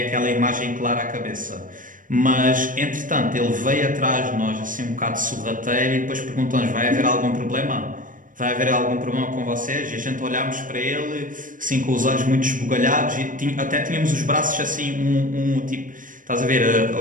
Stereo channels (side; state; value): left; late; 0.39 ms